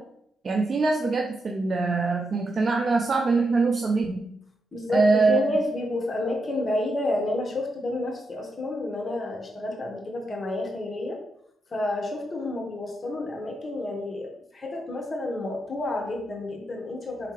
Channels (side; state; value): both; normal; correlation 0.84